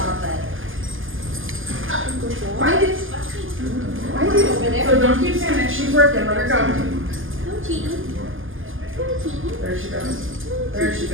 it. Find it. Find it over there. So don't keep saying that. She's working. Let her go. There she goes. There she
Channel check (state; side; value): late; left; 0.58 ms